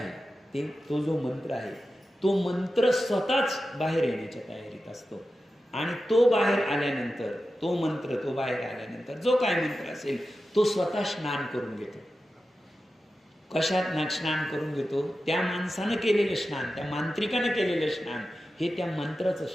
तो जो मंत्र आहे, तो मंत्र स्वतःच बाहेर येण्याच्या तयारीत असतो. आणि तो बाहेर आल्यानंतर, तो बाहेर आल्यानंतर जो काय मंत्र असेल तो स्वतः स्नान करून घेतो. कशात स्नान करून घेतो? त्या माणसानं केलेलं स्नान, त्या मांत्रिकानं केलेलं स्नान हे त्या मंत्राचं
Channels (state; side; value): normal; both; correlation 0.92